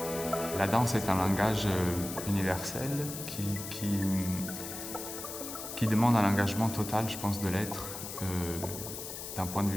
La danse est un langage universel qui demande un engagement total, je pense, de l'être, d'un point de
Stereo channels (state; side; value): noise; left; hiss, 8 dB below the sound